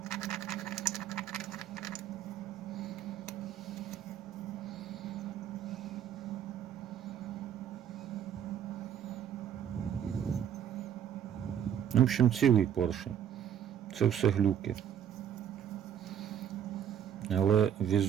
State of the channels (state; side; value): quieter; left; 9.5 dB